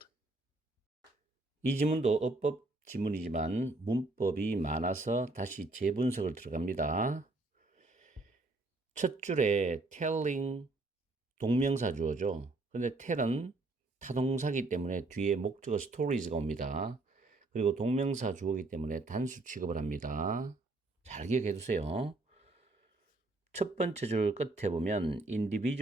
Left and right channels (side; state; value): left; quieter; 3.1 dB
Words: 이 지문도 어법 지문이지만 문법이 많아서 다시 재분석을 들어갑니다. 첫 줄에 telling 동명사 주어죠. 근데 tell은 타동사기 때문에 뒤에 목적어 stories가 옵니다. 그리고 동명사 주어이기 때문에 단수 취급을 합니다. 잘 기억해 두세요. 첫 번째 줄 끝에 보면